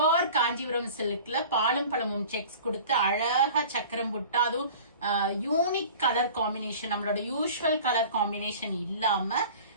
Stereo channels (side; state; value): both; inverted; correlation -0.42